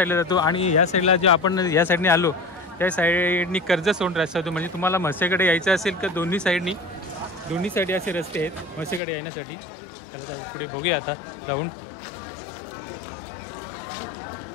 जातो आणि या साईडला जो आपण या साईडने आलो त्या साईडनी कर्जतसोंड रस्ता होतो. म्हणजे तुम्हाला म्हसेकडे यायचं असेल तर दोन्ही साईडनी असे रस्ते आहेत म्हसेकडे येण्यासाठी. त्याला जाऊ पुढे बघूया आता जाऊन.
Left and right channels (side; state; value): right; drops out; at 9.0 s